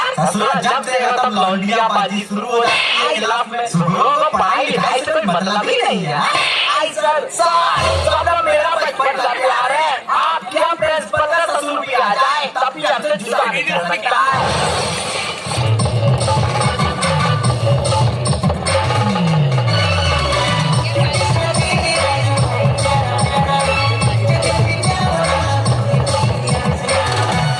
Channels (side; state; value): both; identical; correlation 1.00